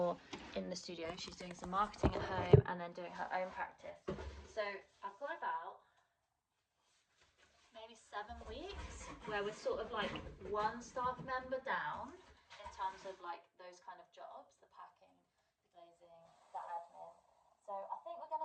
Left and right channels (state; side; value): identical; both; correlation 1.00